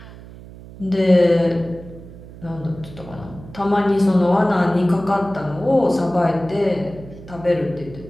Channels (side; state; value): right; noise; hum, 17 dB below the sound